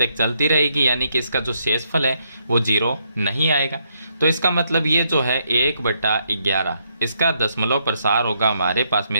चलती रहेगी, यानी कि इसका जो शेषफल है वो 0 नहीं आएगा। तो इसका मतलब ये जो है 1/11 इसका दशमलव प्रसार होगा हमारे पास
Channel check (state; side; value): inverted; both; correlation -0.75